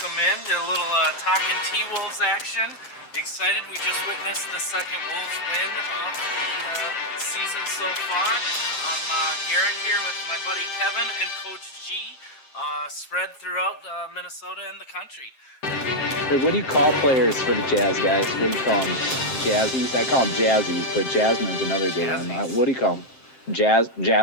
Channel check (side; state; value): right; late; 7.6 ms